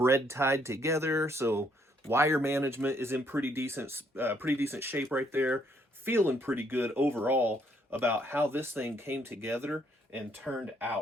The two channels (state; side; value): normal; both; correlation 0.69